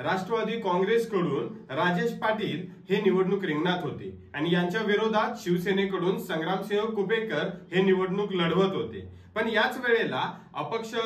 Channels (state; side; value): identical; both; correlation 1.00